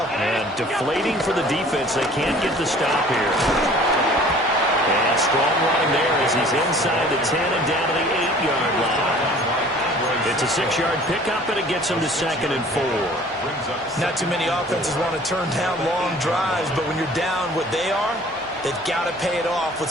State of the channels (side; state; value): both; normal; correlation 0.50